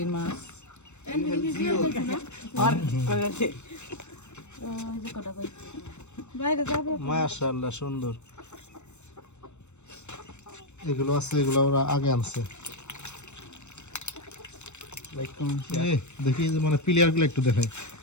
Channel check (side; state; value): right; late; 0.82 ms